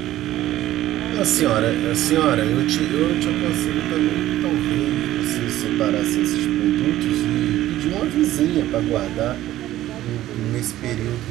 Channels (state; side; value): quieter; left; 14.3 dB